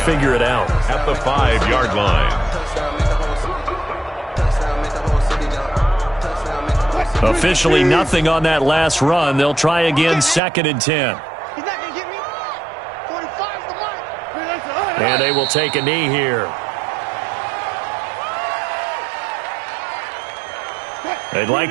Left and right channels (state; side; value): drops out; left; at 10.4 s